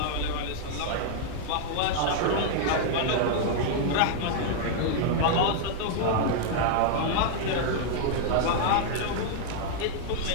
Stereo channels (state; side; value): different; both; correlation -0.01